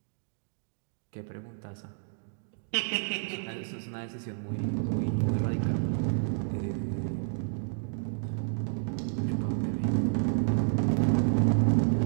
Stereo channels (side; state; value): left; silent; digital silence